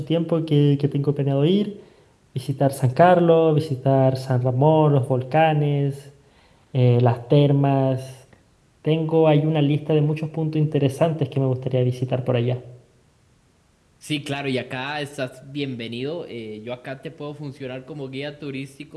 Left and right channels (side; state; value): both; identical; correlation 1.00